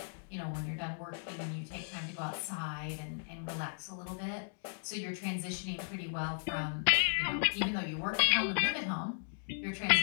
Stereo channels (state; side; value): silent; right; digital silence